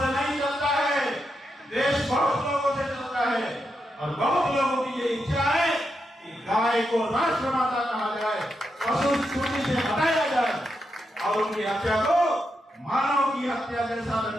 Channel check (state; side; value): normal; both; correlation 0.85